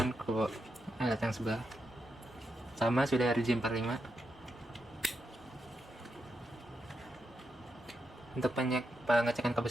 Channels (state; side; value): normal; both; correlation 0.85